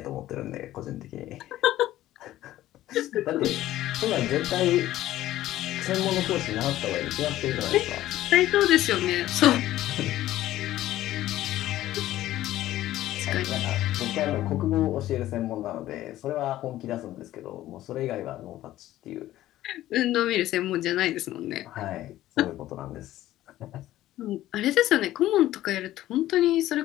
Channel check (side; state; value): right; quieter; 14.4 dB